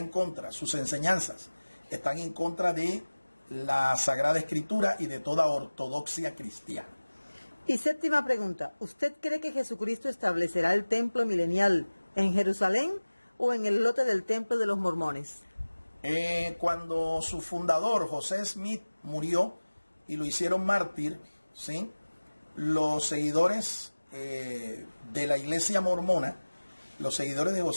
contra, sus enseñanzas están en contra de la Sagrada Escritura y de toda ortodoxia cristiana. Y séptima pregunta, ¿usted cree que Jesucristo establecerá el templo milenial en Jerusalén o en el lote del templo de los mormones? Cuando su fundador, José Smith, murió y lo hicieron mártir, ¿sí?, los seguidores de la iglesia mormona, los seguidores de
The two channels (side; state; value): both; inverted; correlation -1.00